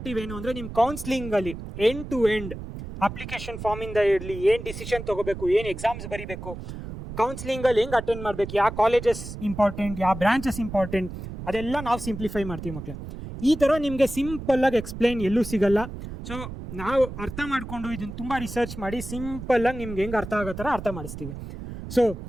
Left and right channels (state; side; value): noise; right; rumble, 10 dB below the sound